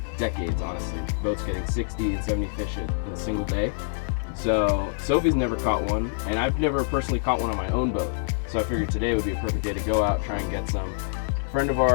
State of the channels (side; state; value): right; silent; 61 dB below the other